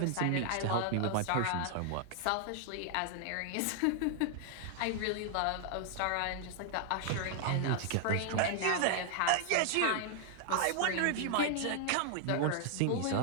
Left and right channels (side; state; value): both; different; correlation 0.00